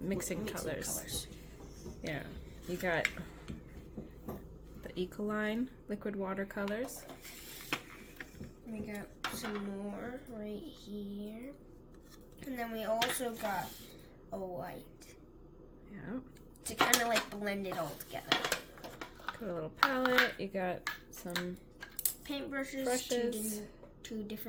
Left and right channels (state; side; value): identical; both; correlation 1.00